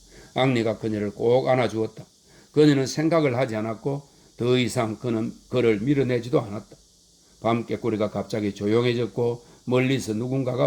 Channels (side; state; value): both; identical; correlation 1.00